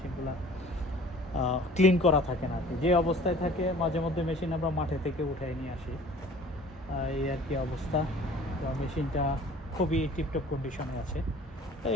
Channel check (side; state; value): both; normal; correlation 0.48